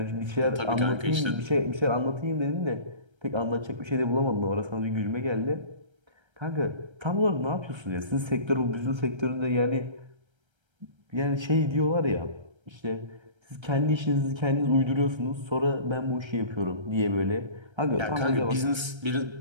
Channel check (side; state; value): left; late; 1.3 ms